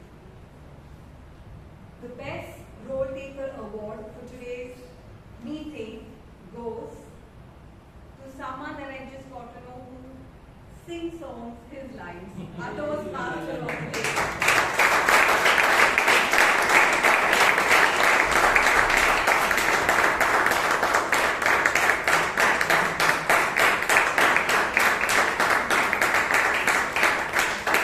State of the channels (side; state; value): both; identical; correlation 1.00